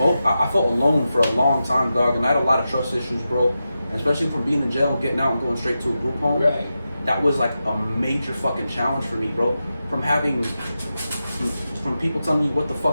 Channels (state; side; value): inverted; both; correlation -0.90